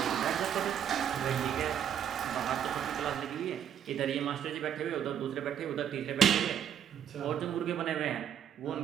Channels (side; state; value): left; quieter; 9.1 dB